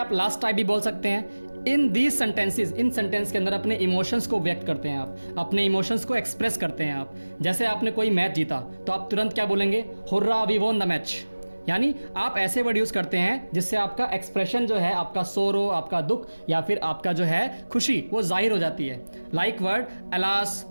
लास्ट टाइप भी बोल सकते हैं। In these sentences, in sentence के अंदर अपने इमोशंस को व्यक्त करते हैं आप, अपने इमोशंस को एक्सप्रेस करते हैं आप। जैसे आपने कोई मैच जीता तो आप तुरंत क्या बोलेंगे, hurrah we won the match. यानी आप ऐसे वर्ड यूज़ करते हैं जिससे आपका एक्सप्रेशन जो है, आपका सोरो, आपका दुख या फिर आपका जो है खुशी, वो जाहिर हो जाती है। Like word alas,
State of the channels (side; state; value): both; inverted; correlation -1.00